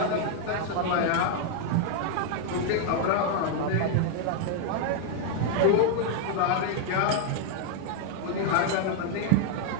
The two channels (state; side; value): different; both; correlation 0.00